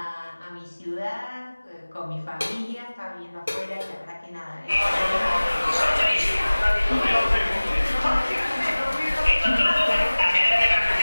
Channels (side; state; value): both; inverted; correlation -1.00